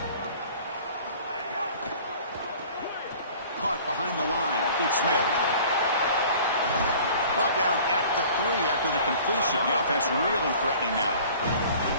Caught behind the line. It's Smith. Brought down at the 3 after the completion. The offense really threatening now.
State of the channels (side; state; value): both; inverted; correlation -0.47